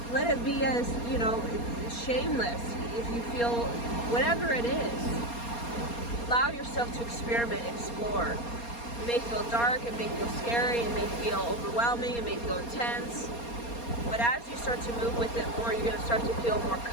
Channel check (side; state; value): right; late; 4.3 ms